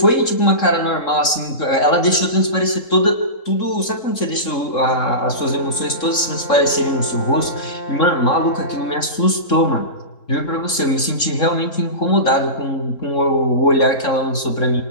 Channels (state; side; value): late; right; 3.7 ms